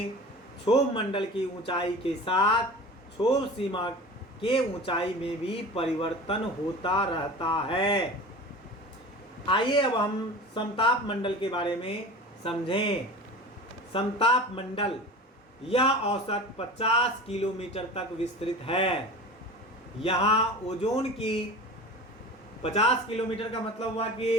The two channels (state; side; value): normal; both; correlation 0.36